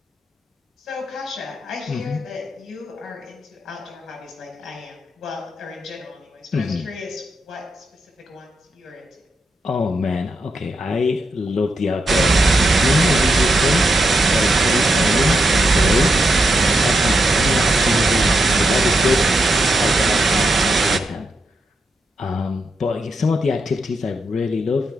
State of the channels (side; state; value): both; normal; correlation 0.83